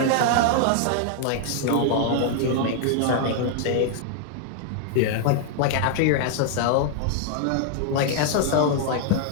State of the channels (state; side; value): different; both; correlation 0.00